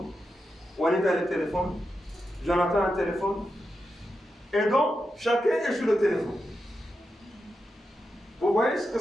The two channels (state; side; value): normal; both; correlation 0.88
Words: Juanita a le téléphone. Jonathan a le téléphone. Et donc, chacun est sur le téléphone. Vous voyez ce que